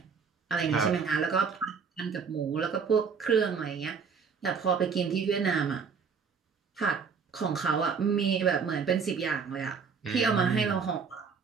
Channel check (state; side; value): quieter; left; 5.8 dB